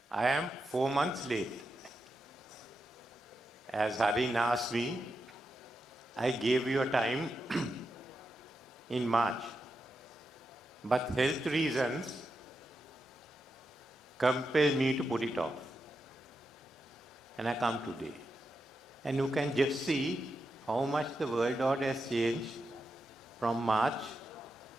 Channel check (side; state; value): both; normal; correlation 0.87